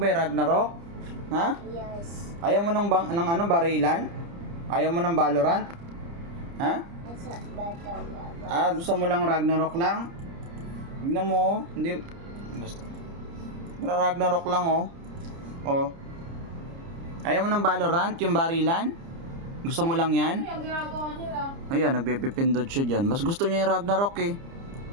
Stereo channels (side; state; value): left; late; 30 ms